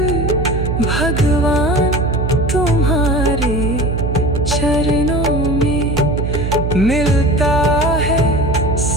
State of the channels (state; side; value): noise; right; hum, 1 dB below the sound